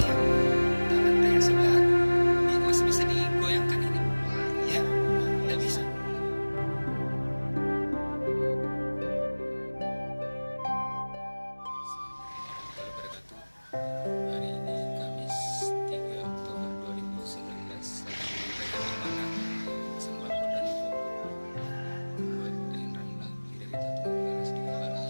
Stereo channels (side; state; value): both; inverted; correlation -1.00